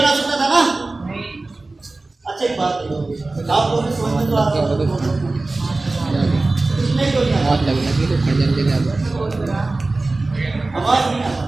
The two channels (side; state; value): left; quieter; 3.2 dB